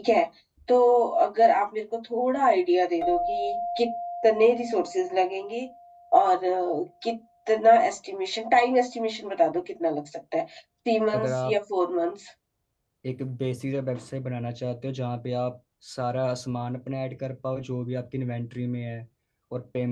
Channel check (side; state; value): both; identical; correlation 1.00